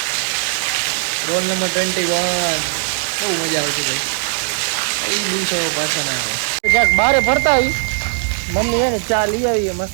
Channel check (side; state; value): left; silent; 67 dB below the other